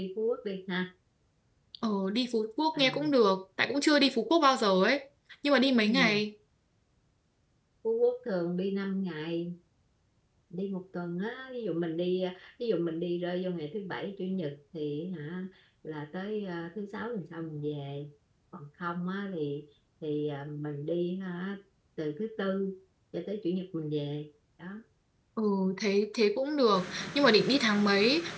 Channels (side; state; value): both; identical; correlation 1.00